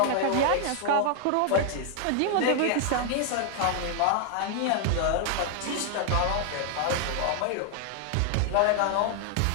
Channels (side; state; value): both; different; correlation 0.00